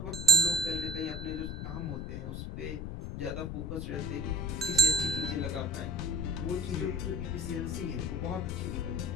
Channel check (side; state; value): left; noise; rumble, 5 dB below the sound